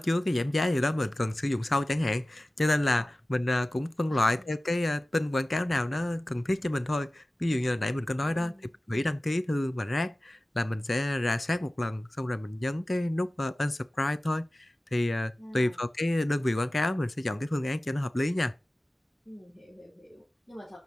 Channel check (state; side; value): normal; both; correlation 0.96